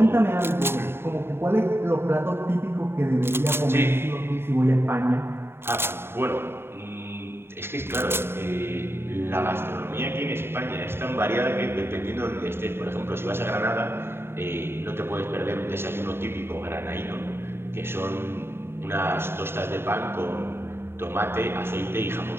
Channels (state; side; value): late; left; 0.11 ms